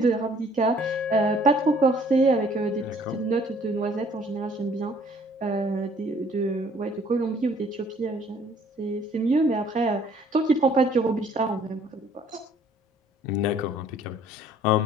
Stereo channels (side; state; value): both; normal; correlation 0.58